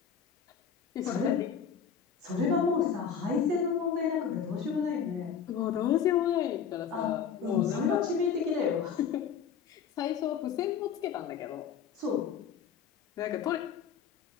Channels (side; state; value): right; quieter; 7.3 dB